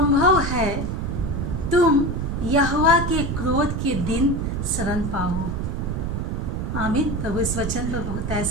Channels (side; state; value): right; noise; rumble, 2 dB below the sound